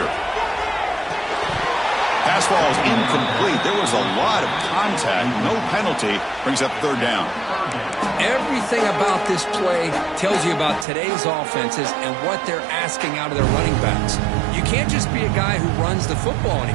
Pass ball is incomplete. There was a lot of contact. No penalty. Brings up third down. everything about this play tells you about today's offenses and what they're asking out of their running backs. You can't just be a guy who runs the football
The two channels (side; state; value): left; drops out; at 10.9 s